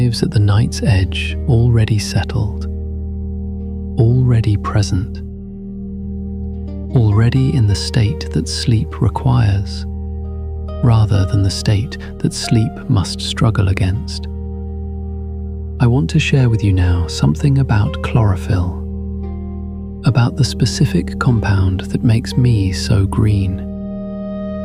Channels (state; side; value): identical; both; correlation 1.00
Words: at the night's edge already settled, already present, already in the state that sleep requires, rather than the state that sleep must struggle against. I want to share with you now something about chlorophyll, about the specific compound that makes me so green,